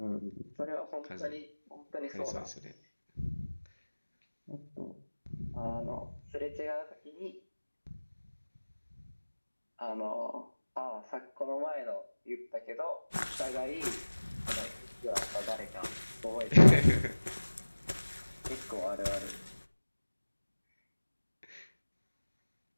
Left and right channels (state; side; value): inverted; both; correlation -1.00